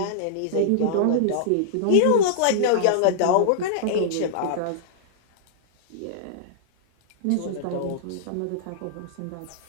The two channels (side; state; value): both; different; correlation -0.02